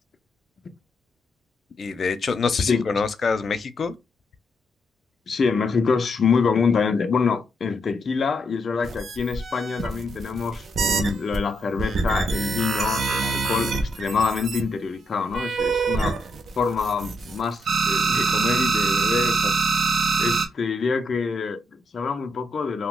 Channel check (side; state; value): both; normal; correlation 0.79